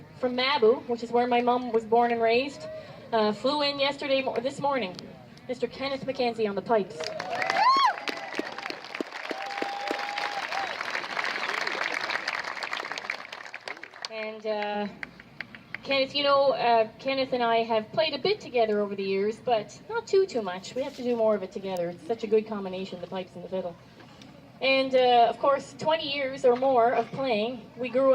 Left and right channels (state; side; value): identical; both; correlation 1.00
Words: from Mabu, which is where my mum was born and raised. Flew in this morning. Mr. Kenneth McKenzie on the pipes. And Kenneth, Kenneth and I have played a bit together over the years, but not too much. We have to do more of it together. It's such a good combination, the pipes and the fiddle. And of course, 20 years or more of playing. We grew